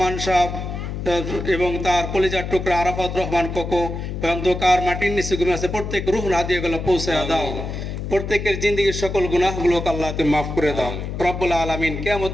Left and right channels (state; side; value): noise; left; hum, 5 dB below the sound